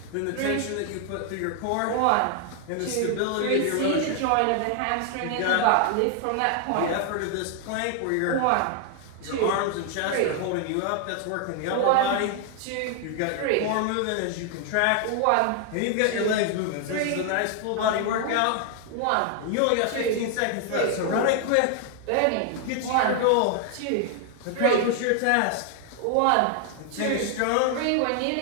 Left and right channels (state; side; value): different; both; correlation 0.00